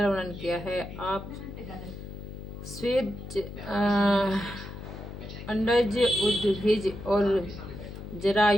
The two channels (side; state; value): left; noise; hum, 11 dB below the sound